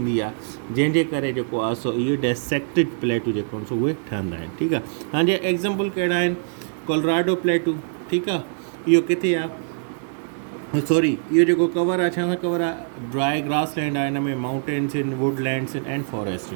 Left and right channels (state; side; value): silent; left; digital silence